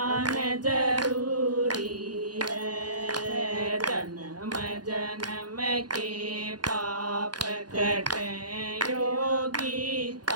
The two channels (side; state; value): left; late; 0.69 ms